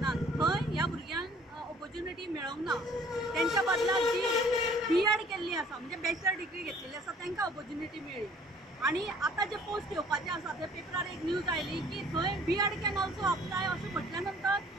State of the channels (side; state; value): both; normal; correlation 0.55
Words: थंय ह्या भुरग्यांक ऑपॉर्च्युनिटी मेळोंक ना। तेंच्या बदलाक जी B.Ed केल्ली आसा म्हणजे बॅचलर डिग्री घेतलेली आसा तांकां ऑपॉर्च्युनिटी मेळ्ळी। आणि आता जे पोस्ट येवपाचे आसा ते पेपरार एक न्यूज आयली की थंय B.Ed कॅन ऑल्सो अप्लाय अशें म्हटल्या नंतर